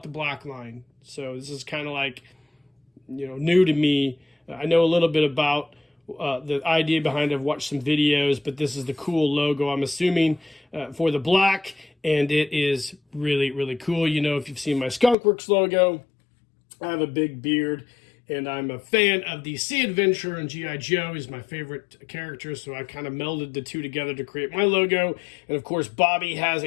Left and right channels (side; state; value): right; drops out; at 15.2 s